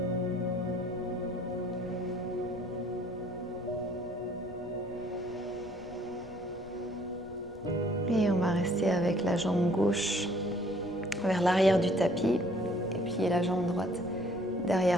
Et on va rester avec la jambe gauche vers l'arrière du tapis et puis la jambe droite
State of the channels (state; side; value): noise; left; rumble, 20 dB below the sound